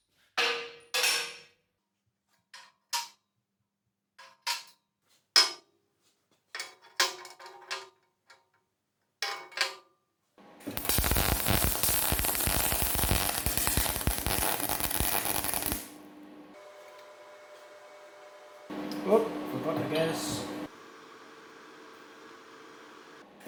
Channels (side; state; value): both; identical; correlation 1.00